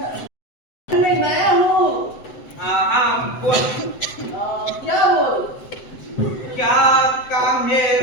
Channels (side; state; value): right; late; 7.8 ms